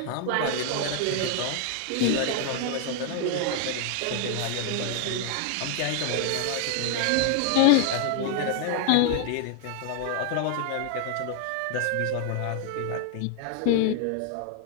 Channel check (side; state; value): both; different; correlation 0.00